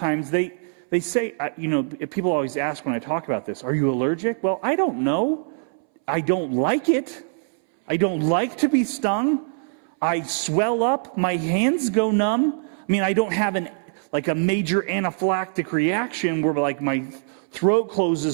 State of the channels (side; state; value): left; silent; 63 dB below the other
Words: They say, people always ask when I talk about this, are you allergic? Well, I don't know. I don't like it. I don't like to be stung. I swell up. My hands go numb. I mean, I don't have like a major anaphylactic reaction where like my throat